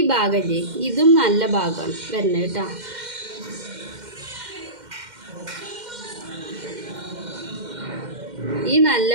ഭാഗമല്ലേ, ഇതും നല്ല ഭാഗമാണ് വരുന്നത് കേട്ടോ. ഈ നല്ല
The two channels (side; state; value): left; late; 2.1 ms